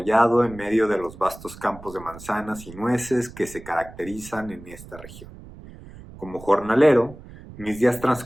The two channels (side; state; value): right; noise; rumble, 17 dB below the sound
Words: en medio de los vastos campos de manzanas y nueces que se caracterizan en esta región. Como jornalero, mis días